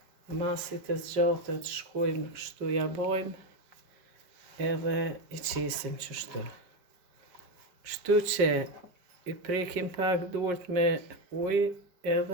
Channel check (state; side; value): late; left; 5.1 ms